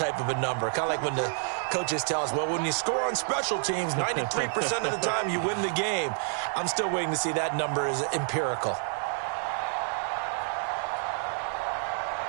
of a number. Kind of like when the coaches tell us, well, when you score on special teams, 93% of the time you win the game. I'm still waiting to see that number is empirical.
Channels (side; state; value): left; silent; 59 dB below the other